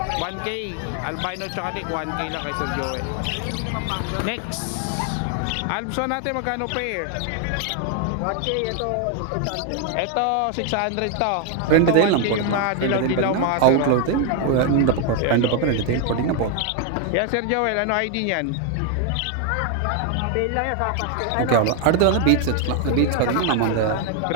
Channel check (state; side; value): different; both; correlation 0.01